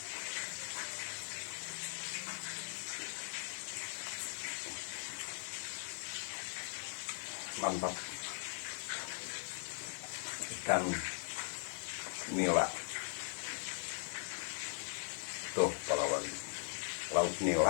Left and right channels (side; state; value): right; silent; 51 dB below the other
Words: Mantap. Ikan nila. Tuh palawagi. Lauk